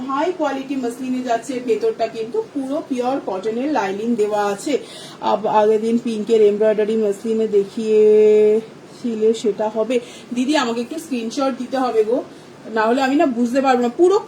হাই কোয়ালিটি মাসলিনে যাচ্ছে, ভেতরটা কিন্তু পুরো পিওর কটনের লাইনিং দেওয়া আছে। আগের দিন পিঙ্কের এমব্রয়ডারি মাসলিনে দেখিয়েছিলে, সেটা হবে দিদি, আমাকে একটু স্ক্রিনশট দিতে হবে গো, না হলে আমি না বুঝতে পারবো না। পুরো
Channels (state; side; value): identical; both; correlation 1.00